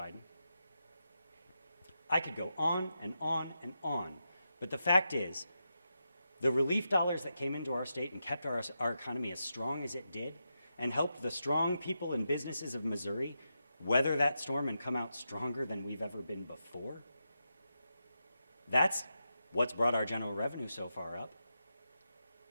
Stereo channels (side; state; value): both; inverted; correlation -0.87